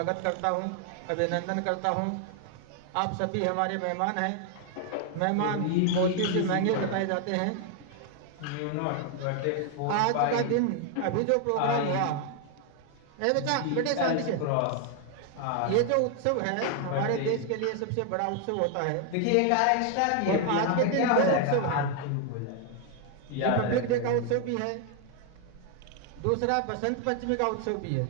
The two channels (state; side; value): different; both; correlation 0.00